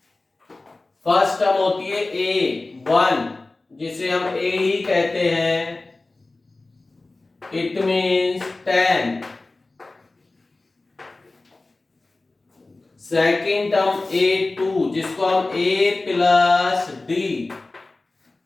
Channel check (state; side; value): quieter; right; 3.2 dB